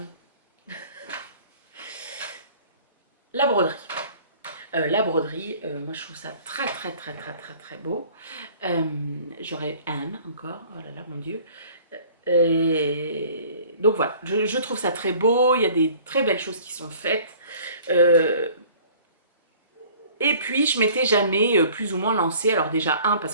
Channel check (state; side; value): inverted; both; correlation -0.50